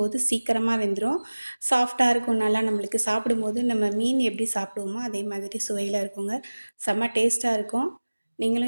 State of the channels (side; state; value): both; inverted; correlation -1.00